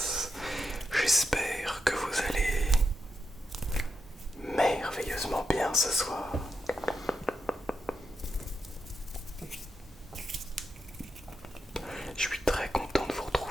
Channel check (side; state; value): both; normal; correlation 0.86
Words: J'espère que vous allez merveilleusement bien ce soir. Je suis très content de vous